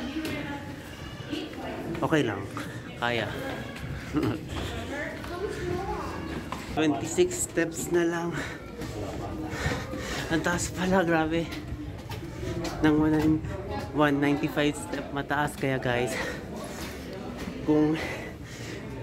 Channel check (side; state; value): both; identical; correlation 1.00